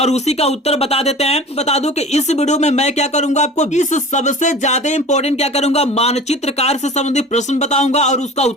उसी का उत्तर बता देते हैं। बता दूं कि इस वीडियो में मैं क्या करूंगा आपको इस सबसे ज्यादा इंपॉर्टेंट क्या करूंगा मानचित्र कार्य से संबंधित प्रश्न बताऊंगा और उसका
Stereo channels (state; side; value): normal; both; correlation 0.39